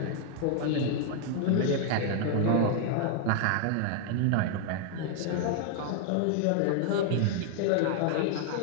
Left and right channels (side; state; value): both; different; correlation 0.00